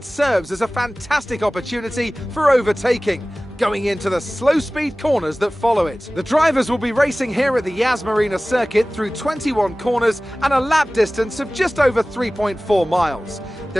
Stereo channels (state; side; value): normal; both; correlation 0.98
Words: serves as a fantastic opportunity for overtaking, going into the slow speed corners that follow it. The drivers will be racing here at the Yas Marina circuit through 21 corners and a lap distance of just over 3.4 miles.